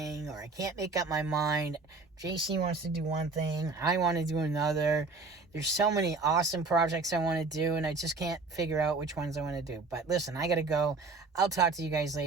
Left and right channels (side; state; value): left; quieter; 3.9 dB